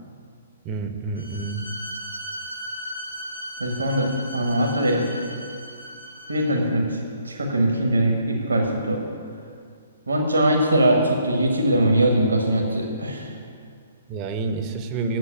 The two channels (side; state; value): both; inverted; correlation -0.69